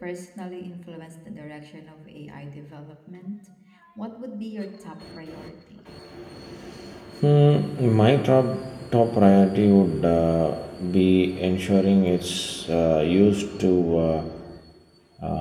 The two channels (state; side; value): identical; both; correlation 1.00